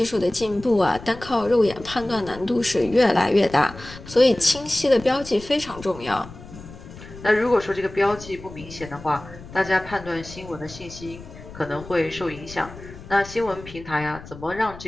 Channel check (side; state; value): left; noise; rumble, 16 dB below the sound